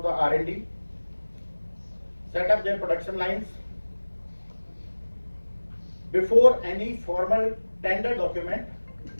the R&D, set up their production lines before any formal tender document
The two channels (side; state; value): both; inverted; correlation -1.00